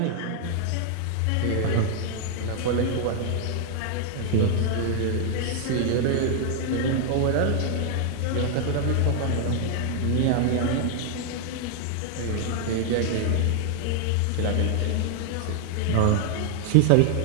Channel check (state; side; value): different; both; correlation 0.00